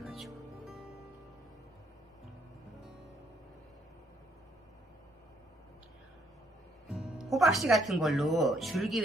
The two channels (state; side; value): normal; both; correlation 0.69